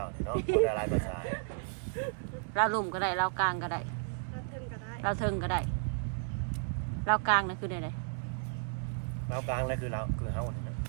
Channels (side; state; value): left; silent; digital silence